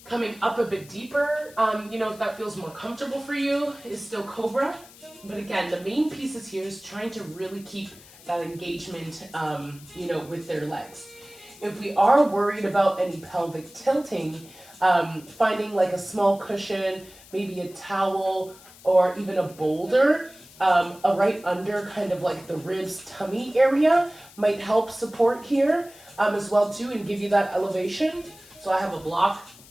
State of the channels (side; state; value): left; noise; hiss, 22 dB below the sound